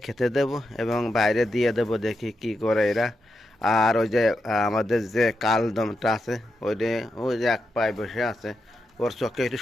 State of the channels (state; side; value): normal; both; correlation 0.86